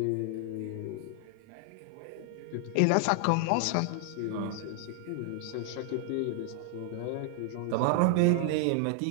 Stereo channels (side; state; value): both; different; correlation 0.00